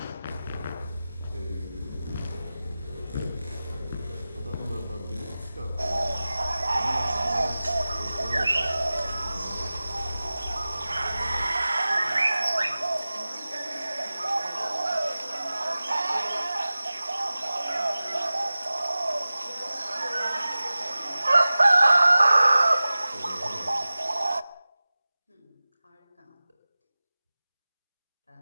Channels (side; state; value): both; inverted; correlation -0.96